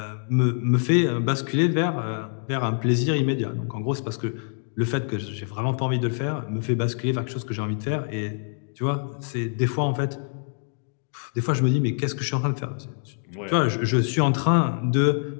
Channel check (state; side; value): silent; right; digital silence